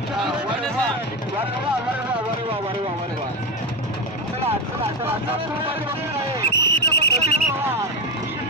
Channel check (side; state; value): both; normal; correlation 0.14